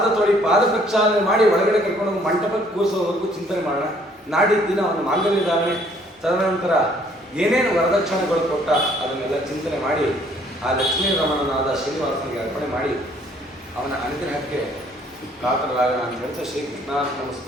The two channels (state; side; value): normal; both; correlation 0.62